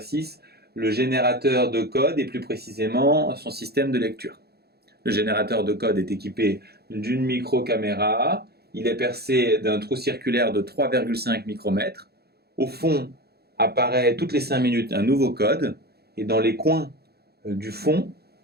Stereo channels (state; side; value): late; left; 0.46 ms